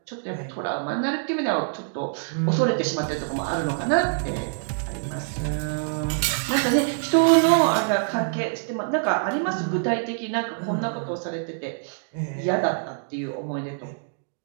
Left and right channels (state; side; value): silent; left; digital silence